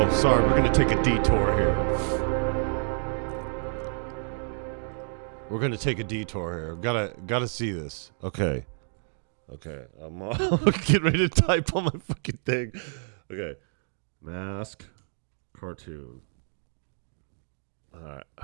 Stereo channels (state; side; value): silent; left; 59 dB below the other